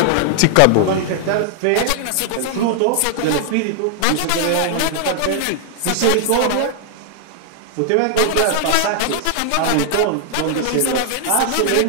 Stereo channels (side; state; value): both; different; correlation 0.00